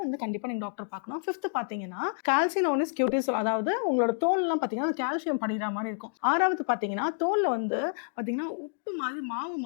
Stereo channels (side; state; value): right; silent; digital silence